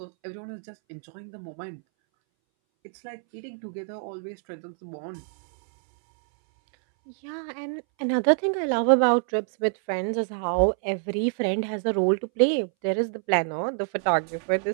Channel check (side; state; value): left; silent; 61 dB below the other